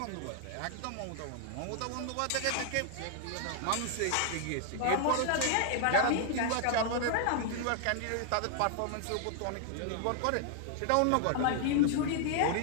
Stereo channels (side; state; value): both; different; correlation 0.00